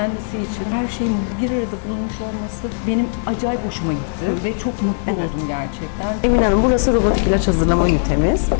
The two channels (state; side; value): silent; right; digital silence